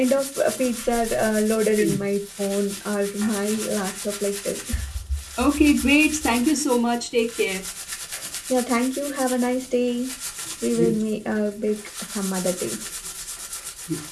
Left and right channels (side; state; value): both; identical; correlation 1.00